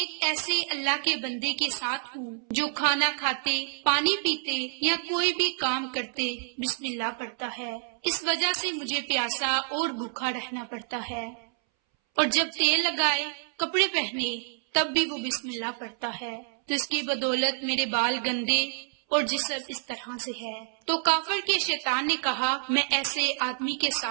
ایسے اللہ کے بندے کے ساتھ ہوں جو کھانا کھاتے، پانی پیتے یا کوئی بھی کام کرتے بسم اللہ پڑھتا ہے، اس وجہ سے مجھے پیاسا اور بھوکا رہنا پڑتا ہے، اور جب تیل لگائے، کپڑے پہنے، تب بھی وہ بسم اللہ پڑھتا ہے، تو اس کی بدولت میرے بال گندے اور جسم اس طرح سے ہے۔ تو کافر کے شیطان نے کہا، میں ایسے آدمی کے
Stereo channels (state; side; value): silent; left; 59 dB below the other